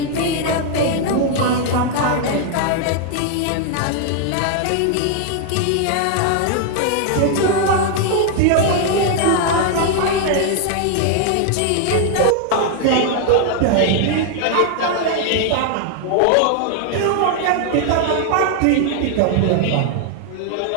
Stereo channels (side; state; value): both; different; correlation 0.00